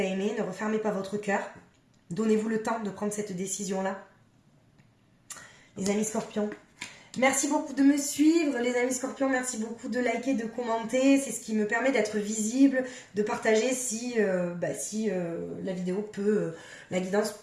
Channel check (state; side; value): identical; both; correlation 1.00